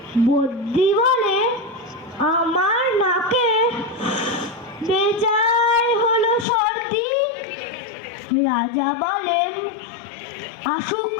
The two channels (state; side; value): drops out; right; at 6.5 s